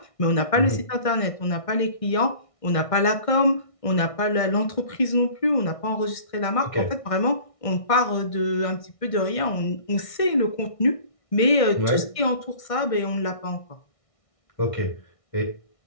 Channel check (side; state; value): right; late; 1.6 ms